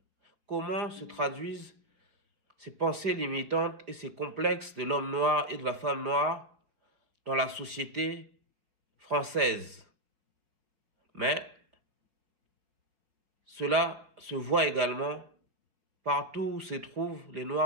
Comment se traduisent ces pensées limitantes et ces complexes de l'homme noir et de la femme noire dans la société française? Mais cela se voit également partout où se trouvent les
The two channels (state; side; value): late; left; 4.9 ms